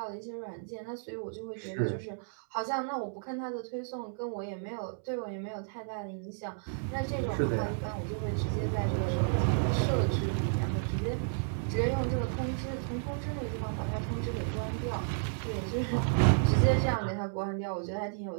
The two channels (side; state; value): left; silent; digital silence